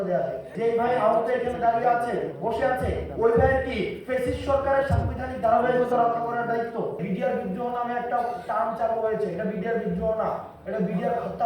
দেওয়া যায়। যে ভাই আহত এখানে দাঁড়িয়ে আছে, বসে আছে, ওই ভাইয়ের কি ফ্যাসিস্ট সরকারের সাংবিধানিক ধারাবাহিকতা রক্ষা করার দায়িত্ব? বিডিআর বিদ্রোহ নামে একটা টার্ম চালু হয়েছে, এটা বিডিআর বিদ্রোহ না, এটা বিডিআর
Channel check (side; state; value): both; identical; correlation 1.00